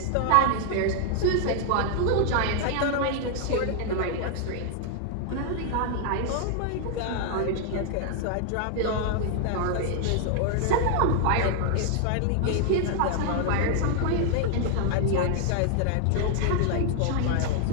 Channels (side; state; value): both; different; correlation 0.00